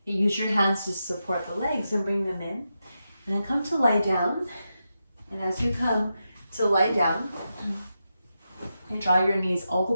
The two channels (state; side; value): inverted; both; correlation -0.88